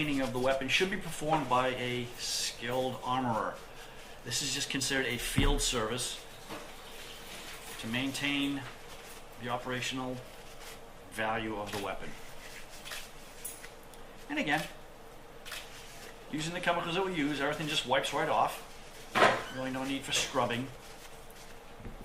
of the weapon should be performed by a skilled armorer. This is just considered a field service to maintain the operational value of the weapon. And again, using the chemicals that we use, everything just wipes right off. Really no need for scrubbing.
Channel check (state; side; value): identical; both; correlation 1.00